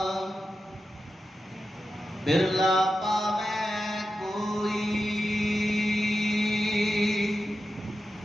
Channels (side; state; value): both; normal; correlation 0.91